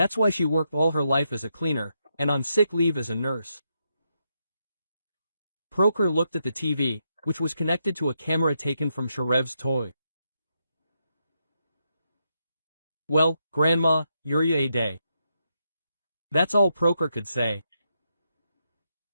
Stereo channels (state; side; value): inverted; both; correlation -0.82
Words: why she worked all her life as a cleaner, and on sick leave as a nurse. Proker looked at the TV, which was connected to a camera taken from Sharev's toy. "Well, Grandma, you're a day." That's all Proker could say.